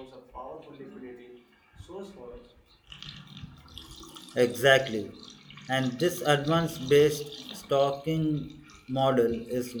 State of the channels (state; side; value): identical; both; correlation 1.00